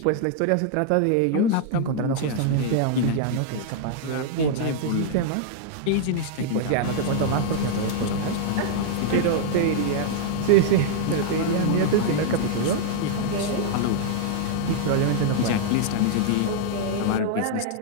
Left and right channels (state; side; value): different; both; correlation -0.01